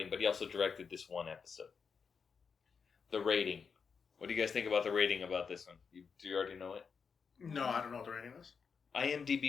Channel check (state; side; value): quieter; right; 5.9 dB